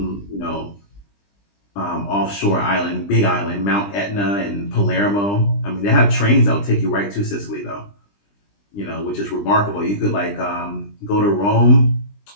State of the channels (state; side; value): late; right; 20 ms